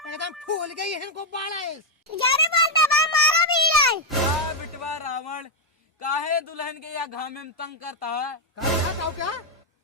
एकदम फूल गई है इनको बाड़ा। ज्यादा बोलता बा मारो भी लाई। का बिटवा रावण काहे दुल्हन के या घामे में तंग करता है। क्या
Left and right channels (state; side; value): normal; both; correlation 0.01